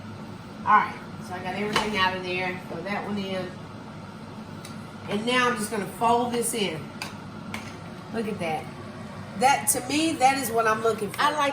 All right, so I got everything out of there. Throw that one in. And now I'm just going to fold this in. Look at that. That, to me, that is what I'm looking for. I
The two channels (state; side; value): identical; both; correlation 1.00